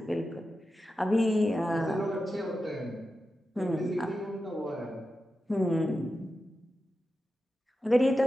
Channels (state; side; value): normal; both; correlation 0.91